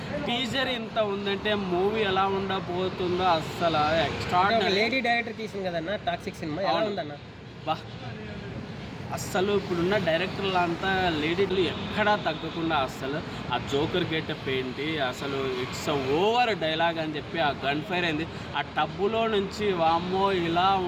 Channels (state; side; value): identical; both; correlation 1.00